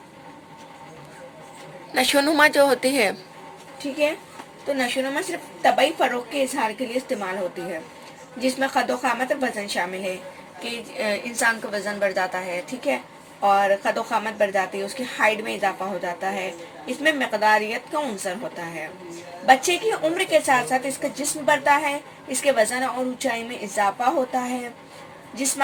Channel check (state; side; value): identical; both; correlation 1.00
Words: नशोनुमा जो होती है, ठीक है, तो नशोनुमा सिर्फ तबई फ़रोग़ के इजहार के लिए इस्तेमाल होती है, जिसमें क़द क़ामत और वज़न शामिल है कि इंसान का वज़न बढ़ जाता है। ठीक है, और क़द क़ामत बढ़ जाती है, उसकी हाइट में इजाफा हो जाता है। इसमें मक़दारियत का उनसर होता है। बच्चे की उम्र के साथ साथ इसका जिस्म बढ़ता है, इसके वज़न और ऊंचाई में इजाफा होता है।